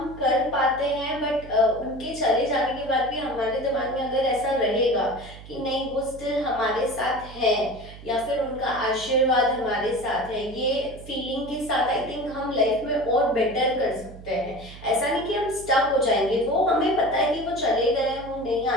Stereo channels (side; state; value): right; noise; hum, 16 dB below the sound